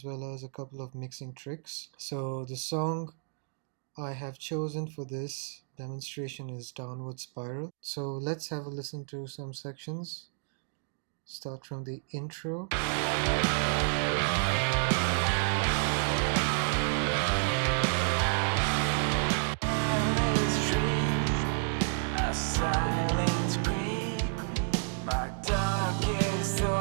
well as a couple of mixing tricks. So the song I have chosen for this demonstration is Downward Spiral. So let's have a listen to some sections. Start from the intro.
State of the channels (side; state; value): left; silent; 57 dB below the other